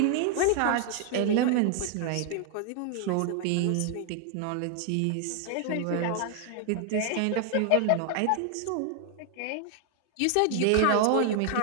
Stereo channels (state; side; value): different; both; correlation 0.00